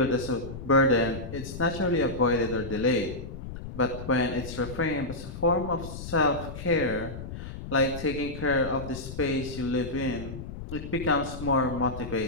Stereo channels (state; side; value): noise; left; rumble, 10 dB below the sound